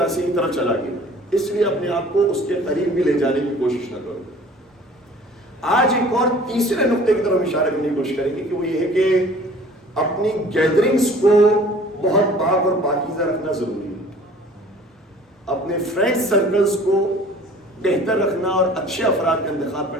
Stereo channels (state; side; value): normal; both; correlation 0.49